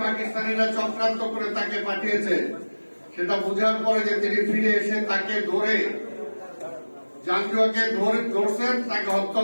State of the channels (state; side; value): inverted; both; correlation -1.00